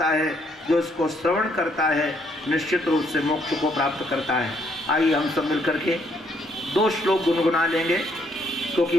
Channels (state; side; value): normal; both; correlation 0.70